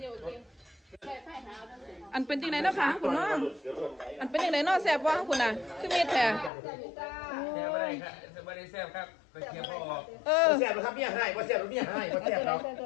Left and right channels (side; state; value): right; drops out; at 6.5 s